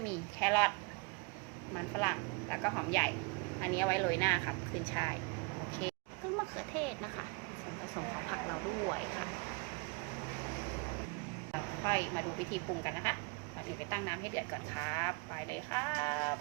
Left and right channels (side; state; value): left; quieter; 29.9 dB